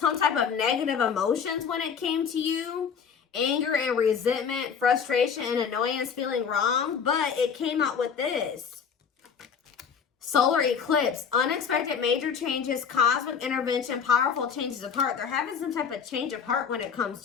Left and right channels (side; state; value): right; quieter; 6.8 dB